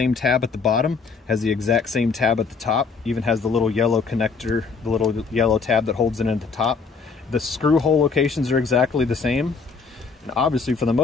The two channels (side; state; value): right; quieter; 5.0 dB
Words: tab at the bottom, has the exact same tab at the top, even has the little yellow connector, the little yellow tab that holds it at the top. The screw hole locations are exactly the same. And obviously, for the